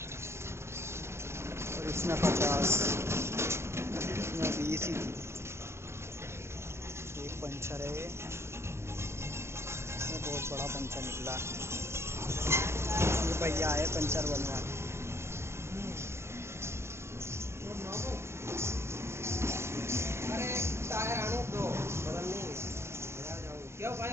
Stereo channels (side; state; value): left; late; 0.13 ms